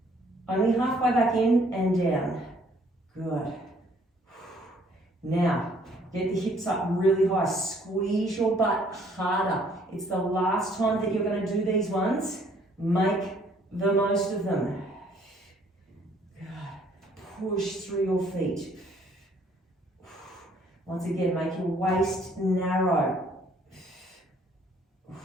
only halfway back in and down. Good. Now, get the hips up really high. Squeeze your butt harder. It's the last time that you're going to do these ones. Make the most of them. Good. Push through your feet. Once again, make your waist narrow.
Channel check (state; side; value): normal; both; correlation 0.62